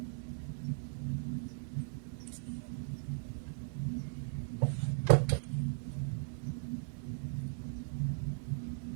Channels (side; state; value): left; silent; digital silence